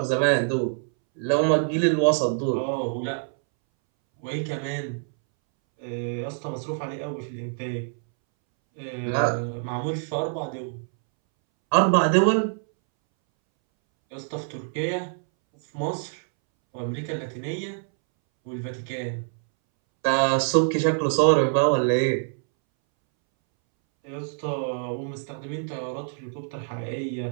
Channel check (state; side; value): silent; left; 61 dB below the other